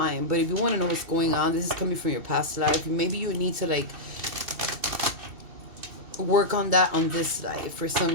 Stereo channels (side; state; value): left; late; 2.7 ms